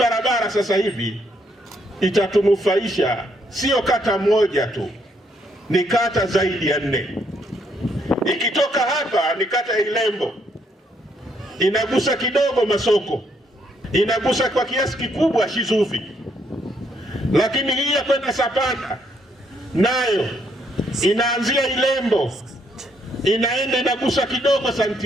sasa hivi itatunufaisha sio kata moja tu, ni kata zaidi ya 4. Ikitoka hapa ni kata ya Ilembo, inagusa kidogo Masoko, inagusa kwa kiasi kikubwa Shizuvi, lakini hii ya kwenda Sapanda nayo inaanzia Ilembo, inaenda inagusa kidogo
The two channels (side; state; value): both; normal; correlation 0.72